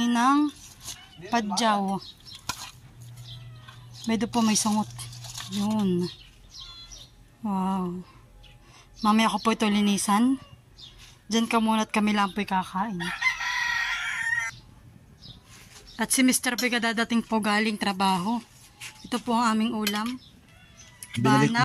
padyaw. Medyo po may sungot. Yun. Wow. Mamaya ko po ito linisan. Diyan ka muna at kami lang po'y kakain. At si Mr. Pega dadating po galing trabaho. Ito po ang aming ulam.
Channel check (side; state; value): both; identical; correlation 1.00